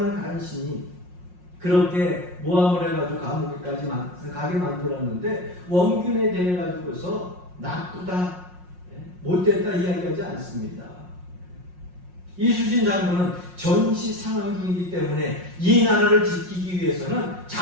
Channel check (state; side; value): late; left; 5.6 ms